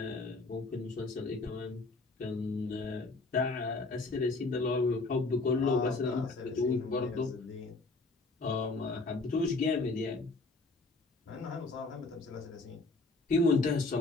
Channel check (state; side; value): quieter; right; 3.5 dB